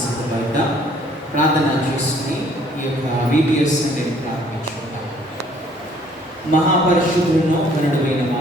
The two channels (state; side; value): normal; both; correlation 0.60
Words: సిద్ధపడ్డ ప్రార్థన చేసుకుని ఈ యొక్క VBS అంటే ప్రారంభించుకుంటాం. మహాపరిశుద్ధులను కరుణమైన